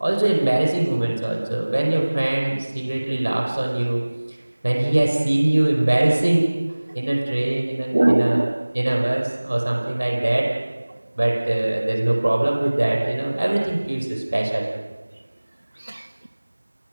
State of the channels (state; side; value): inverted; both; correlation -1.00